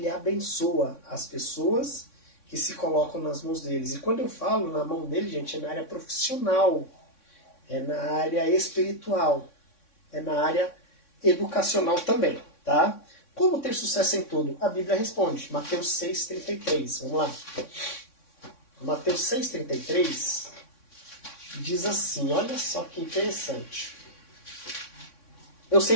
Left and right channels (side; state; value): right; late; 3.6 ms